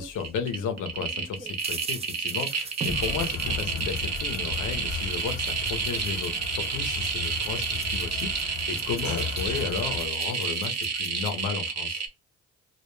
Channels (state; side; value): normal; both; correlation 0.14